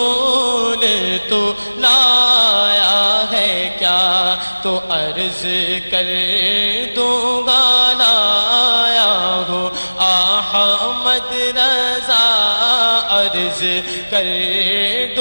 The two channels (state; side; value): inverted; both; correlation -1.00